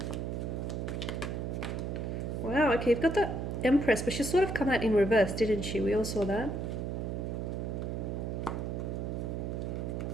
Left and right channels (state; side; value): noise; right; hum, 3 dB below the sound